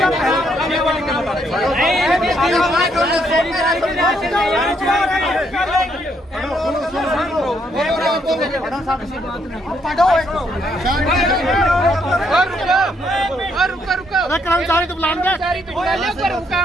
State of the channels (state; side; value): normal; both; correlation 0.73